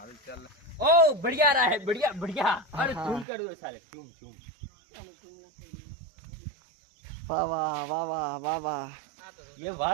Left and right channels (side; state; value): left; drops out; at 3.2 s